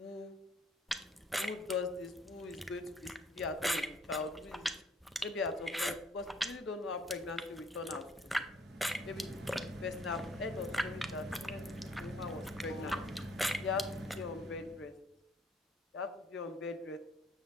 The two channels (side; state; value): both; normal; correlation 0.63